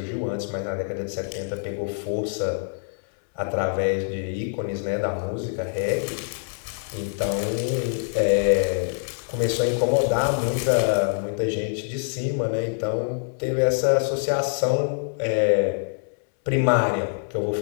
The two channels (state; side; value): silent; right; 62 dB below the other